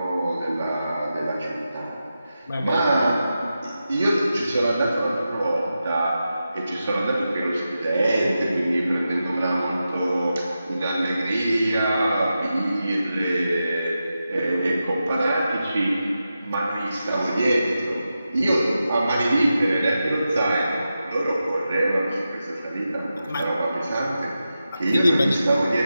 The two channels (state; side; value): inverted; both; correlation -0.90